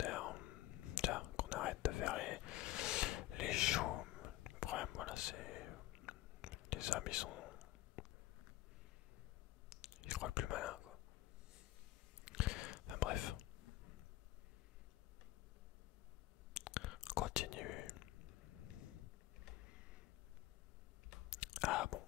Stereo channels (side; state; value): right; quieter; 16.3 dB